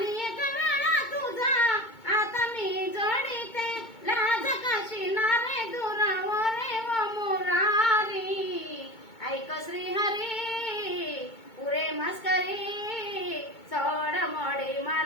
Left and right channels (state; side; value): late; right; 2.2 ms